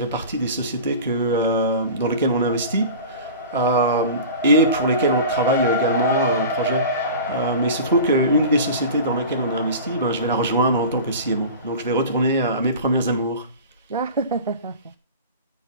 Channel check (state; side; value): inverted; both; correlation -0.35